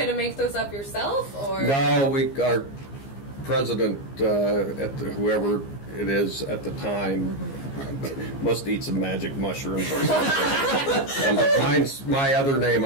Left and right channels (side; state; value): right; late; 15 ms